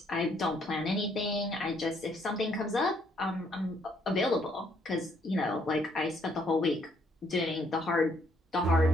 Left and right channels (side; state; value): both; normal; correlation 0.69